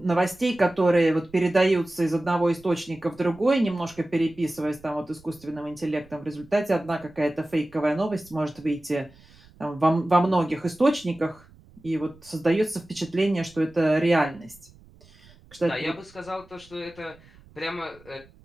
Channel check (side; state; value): right; noise; rumble, 26 dB below the sound